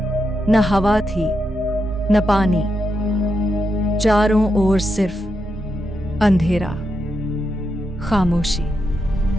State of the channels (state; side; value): normal; both; correlation 0.84